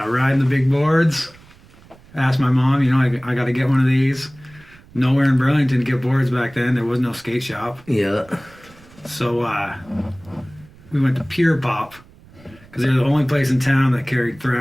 the big boards. Asked my mom, I got to get one of these. Nowhere in Burlington to get boards back then. There was no skate shop. Yeah. So we went to Pure Pop because they're the only place in town that carried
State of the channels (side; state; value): right; noise; rumble, 25 dB below the sound